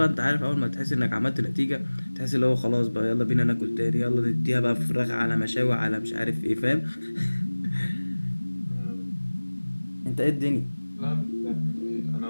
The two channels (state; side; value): inverted; both; correlation -1.00